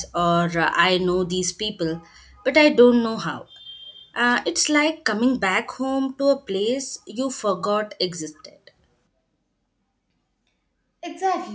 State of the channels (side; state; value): both; identical; correlation 1.00